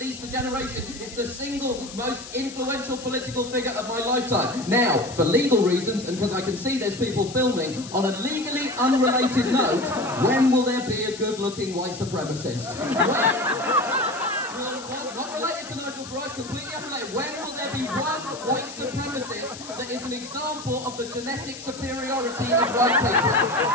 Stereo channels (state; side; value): noise; left; hiss, 14 dB below the sound